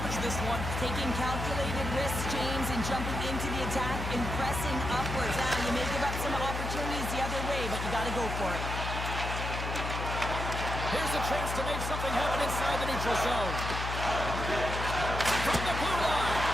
this one. Taking calculated risks, James, and jumping into the attack and pressing upwards. You may give up some opportunities the other way, but you got to go for it. Here's a chance to make something happen inside the neutral zone. From the blue line,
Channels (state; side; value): noise; left; hum, 4 dB below the sound